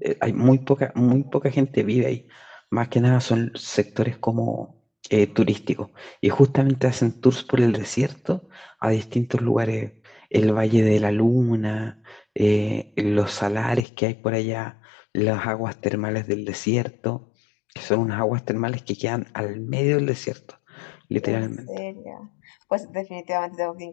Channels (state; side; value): drops out; right; at 13.9 s